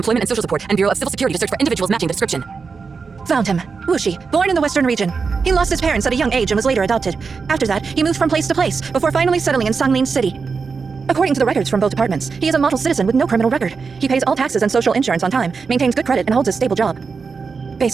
and Social Support and Bureau of Civil Security to search for individuals matching the description. Found him. Wuxi, born in the western region. He lost his parents at a young age and was later adopted. After that, he moved from place to place, before finally settling in Sanglin City. According to the records from both departments, he is a model citizen with no criminal record. He pays all taxes and social insurance on time, maintains good credit, and holds a stable job.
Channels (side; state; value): left; quieter; 5.1 dB